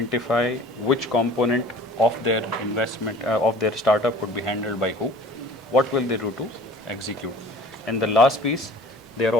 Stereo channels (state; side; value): normal; both; correlation 0.46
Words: which component of their investment, of their startup would be handled by who, what will they do to execute. And the last piece, they are